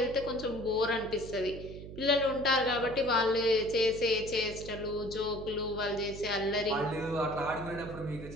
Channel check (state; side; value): noise; right; hum, 12 dB below the sound